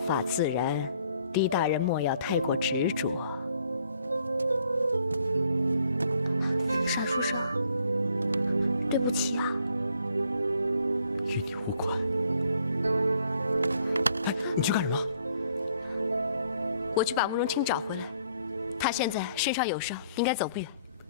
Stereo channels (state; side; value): inverted; both; correlation -0.64